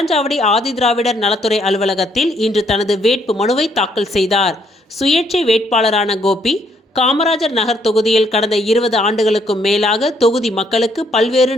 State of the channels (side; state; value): both; normal; correlation 0.70